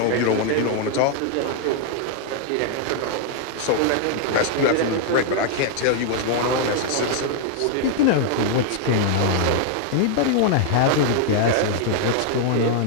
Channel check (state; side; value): different; both; correlation 0.00